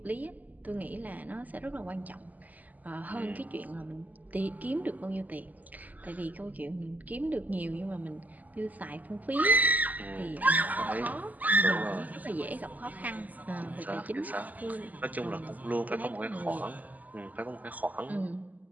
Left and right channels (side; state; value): left; late; 0.080 ms